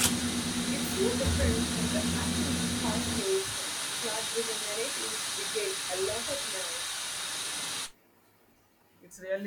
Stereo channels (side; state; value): both; identical; correlation 1.00